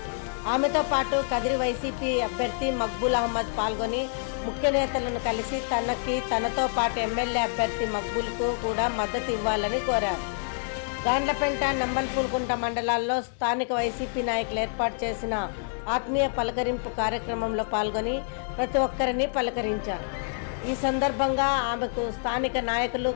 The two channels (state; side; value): silent; right; digital silence